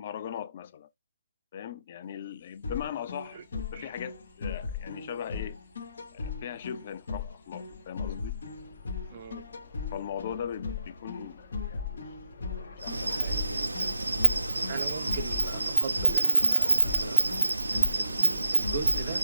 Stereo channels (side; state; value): both; inverted; correlation -0.84